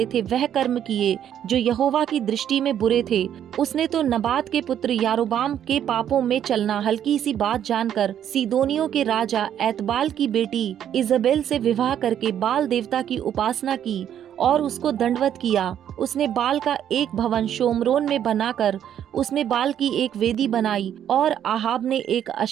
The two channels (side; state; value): left; quieter; 10.0 dB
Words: थे वह कर्म किए जो यहोवा की दृष्टि में बुरे थे। उसने तो नबात के पुत्र यारोबाम के पापों में चलना हल्की सी बात जानकर सीदोनियों के राजा एतबाल की बेटी इजबेल से विवाह करके बाल देवता की उपासना की और उसको दंडवत किया। उसने बाल का एक भवन शोमरोन में बनाकर उसमें बाल की एक वेदी बनाई और आहाब ने एक